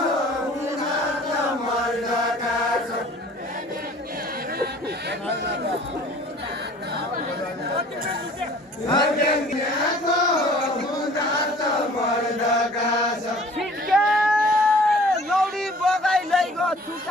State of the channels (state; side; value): normal; both; correlation 0.50